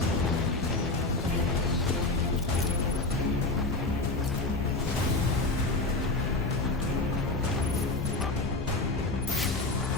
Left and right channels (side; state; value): right; quieter; 3.1 dB